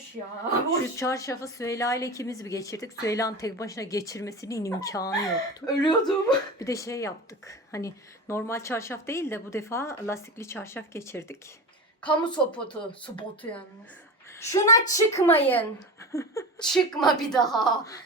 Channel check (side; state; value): both; normal; correlation 0.27